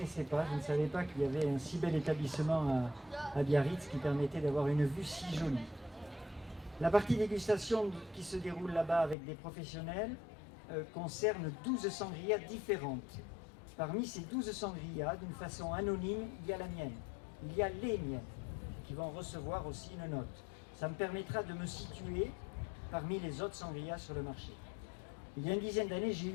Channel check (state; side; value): drops out; right; at 9.2 s